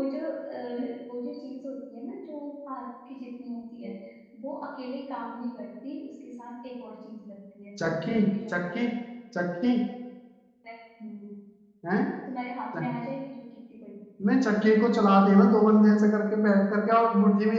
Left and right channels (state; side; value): identical; both; correlation 1.00